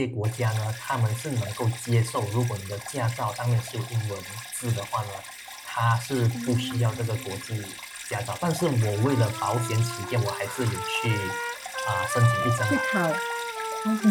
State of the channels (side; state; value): both; identical; correlation 1.00